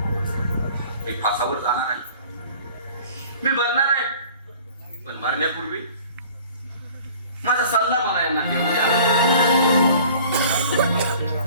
मी फासावर जाणार आहे. मी मरणार आहे. पण मरण्यापूर्वी माझा सल्ला मला यांना घेऊन द्या.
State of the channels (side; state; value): both; inverted; correlation -0.49